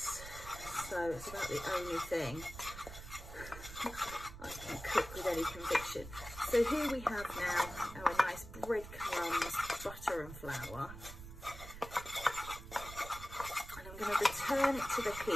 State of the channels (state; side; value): noise; right; rumble, 12 dB below the sound